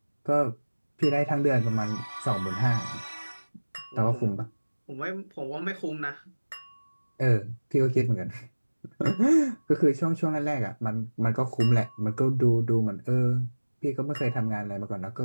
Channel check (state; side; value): inverted; both; correlation -1.00